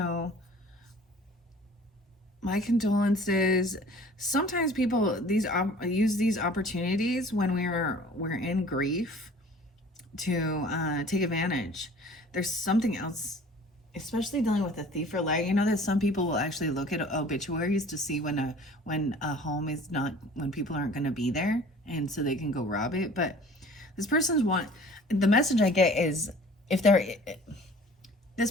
my condolences. Sometimes people use these opportunities when we're in grief to take advantage. There's something else, especially dealing with a thief or liar. You know that some people will actually look at obituaries to see when a home is not, when people aren't going to be there, and so they can go rob it. But this person's the message I get is, if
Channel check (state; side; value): normal; both; correlation 0.48